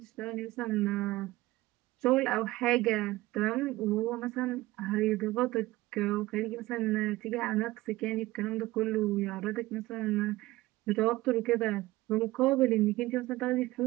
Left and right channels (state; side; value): quieter; left; 18.5 dB